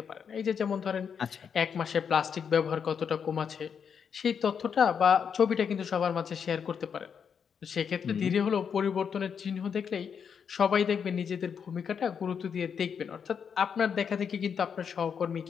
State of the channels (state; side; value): quieter; right; 7.0 dB